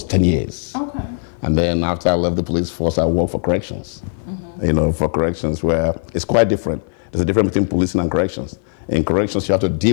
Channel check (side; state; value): right; silent; 55 dB below the other